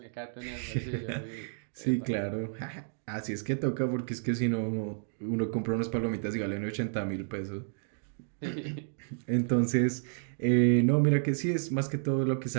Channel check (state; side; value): silent; left; digital silence